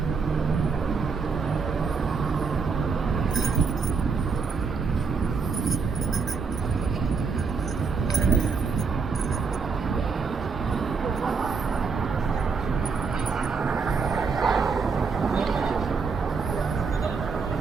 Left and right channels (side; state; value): left; quieter; 5.1 dB